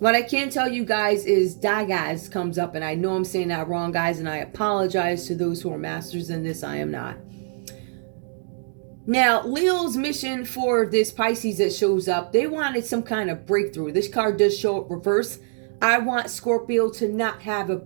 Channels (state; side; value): silent; left; 63 dB below the other